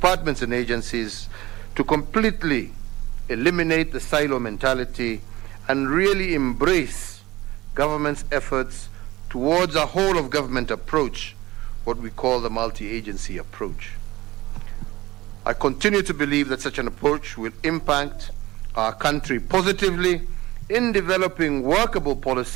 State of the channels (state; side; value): quieter; left; 18.6 dB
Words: and agencies to completely eliminate the silo mentality and really embrace government's efforts towards a whole-of-government approach, what we call the multi-agency approach. I continue to believe that such an approach will impact our country positively in developing workable